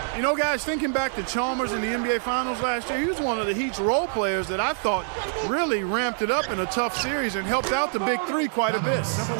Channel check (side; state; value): left; silent; 62 dB below the other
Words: You know, guys, thinking back to Chalmers in the NBA Finals last year, he was one of the Heat's role players that I thought really ramped it up in a tough series and helped out the Big Three quite a bit.